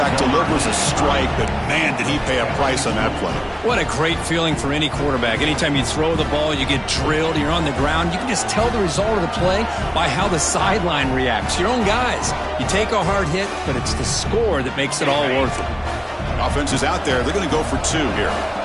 delivers a strike, but man, did he pay a price on that play. What a great feeling for any quarterback. Anytime you throw the ball, you get drilled, you're on the ground. You can just tell the result of the play by how the sideline reacts. Your own guys. You take a hard hit, but it's the score that makes it all worth it. Offense is out there. They're going to go for 2 here.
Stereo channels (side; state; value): both; identical; correlation 1.00